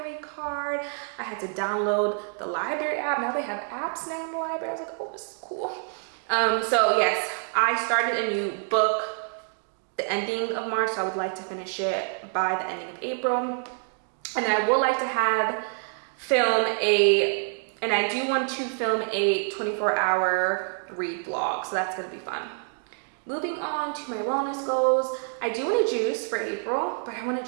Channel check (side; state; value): left; silent; 55 dB below the other